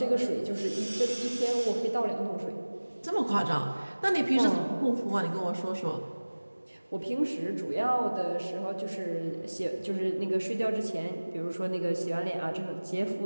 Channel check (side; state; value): both; inverted; correlation -1.00